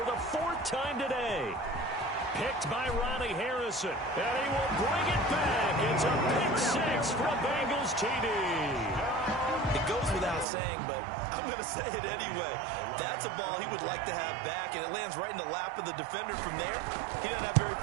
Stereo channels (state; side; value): drops out; left; at 10.5 s